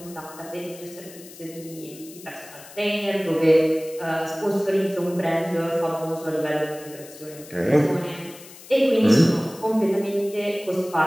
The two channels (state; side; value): noise; left; hiss, 18 dB below the sound